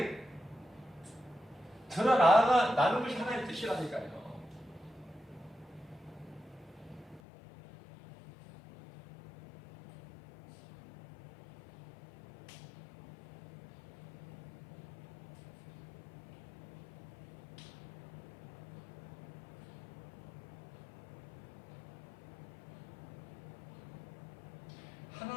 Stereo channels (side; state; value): right; drops out; at 7.2 s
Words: 드러나는 것이 하나님의 뜻이라니까요.